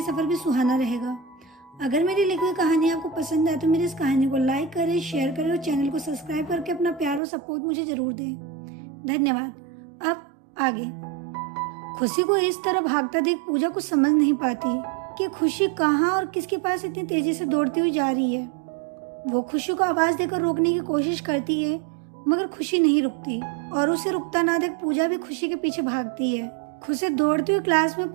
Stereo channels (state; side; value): drops out; left; at 7.2 s